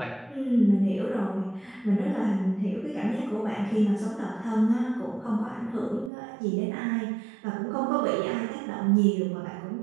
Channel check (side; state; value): left; drops out; at 6.1 s